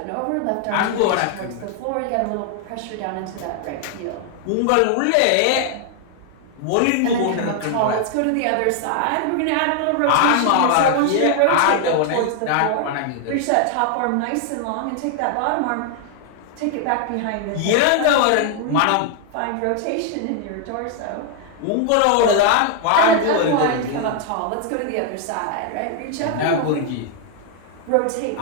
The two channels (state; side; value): different; both; correlation 0.00